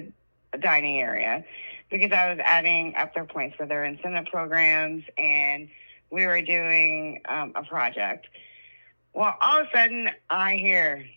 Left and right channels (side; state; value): both; inverted; correlation -1.00